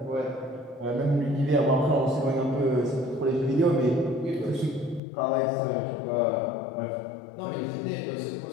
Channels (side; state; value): right; drops out; at 5.0 s